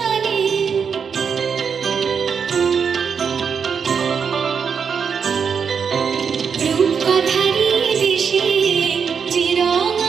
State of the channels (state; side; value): quieter; left; 6.5 dB